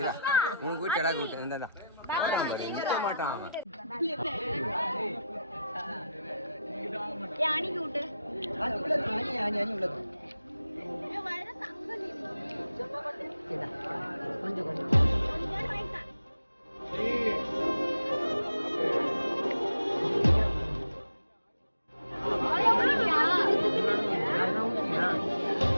உனக்கு கூட்டி எடா கூட்டி இந்தா மாட்டான் அணிக்கு விட்டு கொஞ்சம் கொஞ்சம்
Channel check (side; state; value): both; inverted; correlation -0.82